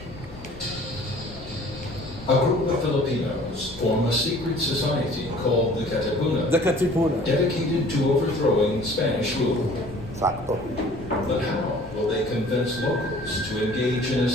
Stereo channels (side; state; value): left; noise; rumble, 17 dB below the sound